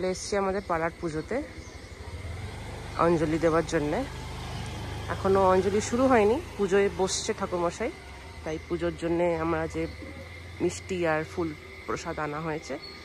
এসেছি আমাদের পাড়ার পুজোতে অঞ্জলি দেওয়ার জন্যে। এখনও অঞ্জলি শুরু হয়নি, পুজোয় বসছে ঠাকুরমশাই, তাই পুজোর জন্যে আমরা যে মিষ্টি আর ফুল প্রসাদ আনা হয়েছে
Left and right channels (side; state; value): both; identical; correlation 1.00